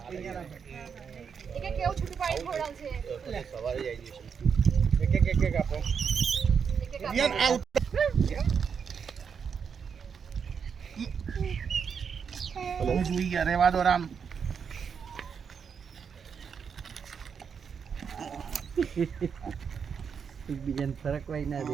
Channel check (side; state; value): left; quieter; 6.6 dB